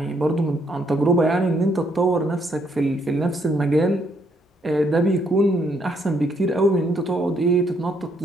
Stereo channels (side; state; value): both; normal; correlation 0.72